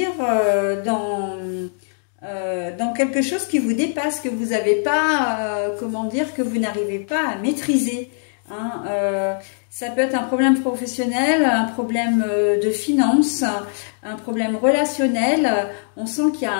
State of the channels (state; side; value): silent; right; digital silence